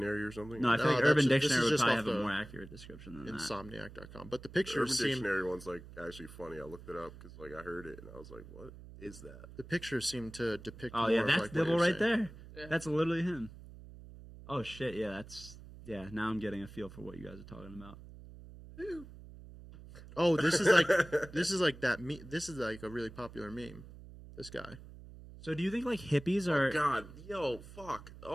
or something? No, I feel No, like that's Urban just- this Dictionary is would just probably off have a the more accurate description than that. Insomniac.com. But the The pictures Urban seem Dictionary one's like actually funny. I looked it up because like I heard it and I was like, what is that? the pictures seem to depict Oh more yeah, of, that's like, what Dibble you're right saying. there. Yeah. That's literally him. Oh shit, yeah, now I'm getting a feel for what you guys are talking about. Oh, this is like that. This is like a really popular meme. This guy. So do you think like hippies are? God, yo, fuck.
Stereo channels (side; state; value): right; noise; hum, 16 dB below the sound